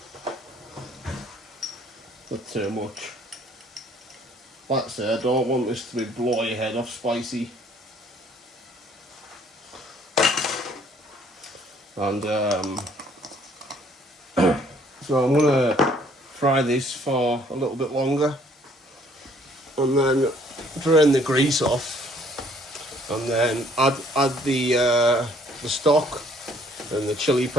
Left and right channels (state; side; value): normal; both; correlation 0.61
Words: Not too much. Like I say, I don't want this to be blow your head off spicy. And so I'm gonna fry this for a little bit longer, and then drain the grease off, and then add the stock and the chili